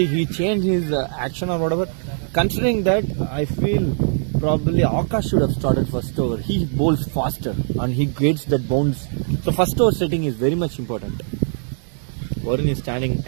he changed his action or whatever. Considering that, I feel probably Akash should have started first over. He bowls faster and he gets that bounce. So first over setting is very much important. Varun is standing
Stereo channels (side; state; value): left; silent; digital silence